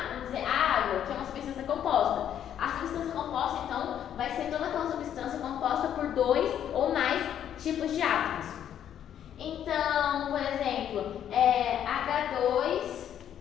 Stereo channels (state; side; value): quieter; right; 9.9 dB